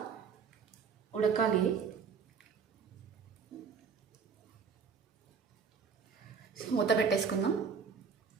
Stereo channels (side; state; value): left; quieter; 6.0 dB